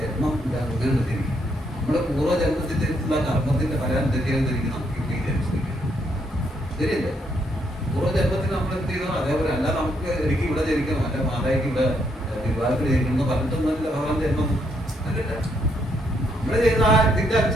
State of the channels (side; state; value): both; normal; correlation 0.74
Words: ജന്മം അങ്ങനെ തിരിക്കും. നമ്മുടെ പൂർവ്വജന്മത്തിലുള്ള കർമ്മത്തിന്റെ ഫലം തെറ്റിയാതിരിക്കും നമുക്ക് ഈ ജനിച്ചിരിക്കുന്നത്. ശരിയല്ലേ? പൂർവ്വജന്മത്തിൽ നമ്മൾ എന്ത് ചെയ്തോ അതേപോലെ. അല്ല നമുക്ക് എനിക്ക് ഇവിടെ ജനിക്കണം, അല്ല മാതായ്ക്ക് ഇവിടെ വിവാഹത്തിൽ ജനിക്കണം പറഞ്ഞിട്ടൊന്നുമില്ല ഭഗവാൻ ജന്മം. അല്ലല്ല, നമ്മൾ ചെയ്യുന്ന ആ ഇതിന്റെ